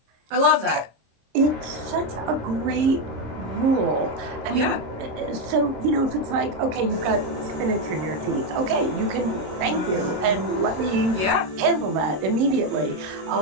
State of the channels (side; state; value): left; late; 27 ms